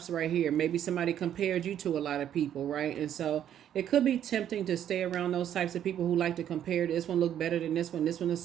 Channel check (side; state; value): left; quieter; 10.3 dB